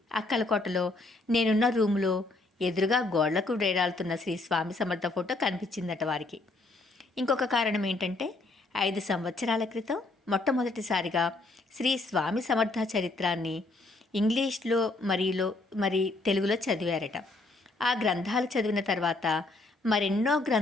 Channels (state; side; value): quieter; right; 3.1 dB